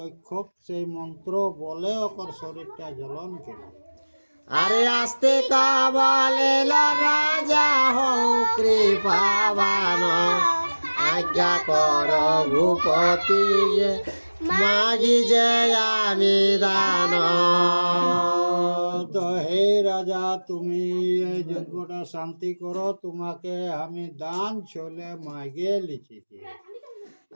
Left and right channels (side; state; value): both; inverted; correlation -1.00